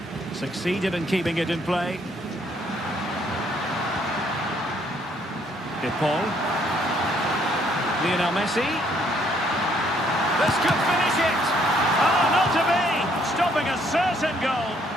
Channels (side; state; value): both; normal; correlation 0.67